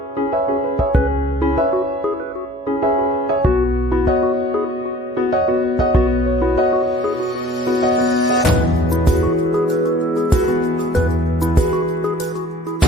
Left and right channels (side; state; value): both; normal; correlation 0.50